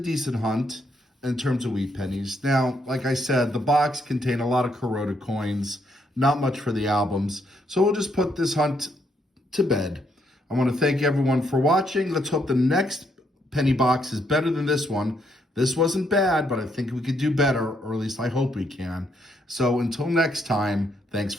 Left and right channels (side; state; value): both; normal; correlation 0.74